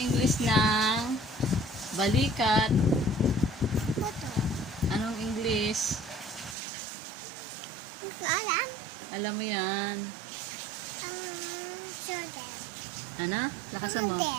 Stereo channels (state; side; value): drops out; left; at 6.6 s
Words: ng balikat? Puto. Anong English? Hindi ko alam. Alam mo yan. Shoulder. Ano? Lakasan mo.